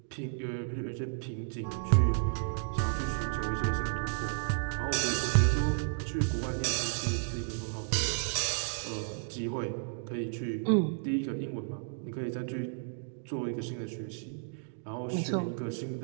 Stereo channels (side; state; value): left; silent; digital silence